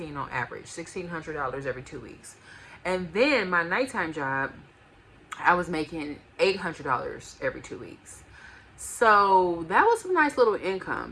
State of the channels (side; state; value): both; identical; correlation 1.00